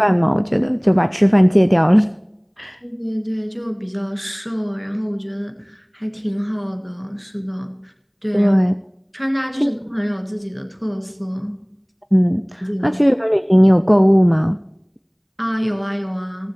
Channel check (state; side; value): identical; both; correlation 1.00